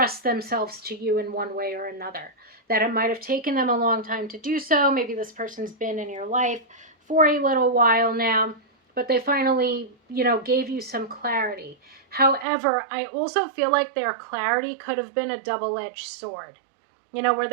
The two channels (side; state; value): left; drops out; at 12.5 s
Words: themselves to you in one way or another. That it might have taken them a long time to do so. Maybe this person's been in your life for a little while now, but they finally, gave you some clarity. However, I also feel like their clarity could have been a double-edged sword. Where